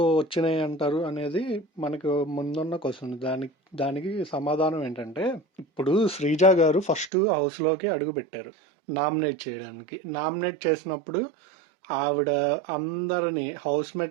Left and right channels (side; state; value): left; drops out; at 7.1 s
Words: వచ్చినాయి అంటారు అనేది మనకు ముందున్న క్వశ్చన్. దానికి సమాధానం ఏంటంటే, ఇప్పుడు శ్రీజ గారు ఫస్ట్ హౌస్ లోకి అడుగు పెట్టారు నామినేట్ చేయడానికి. నామినేట్ చేసినప్పుడు ఆవిడ అందరినీ హౌస్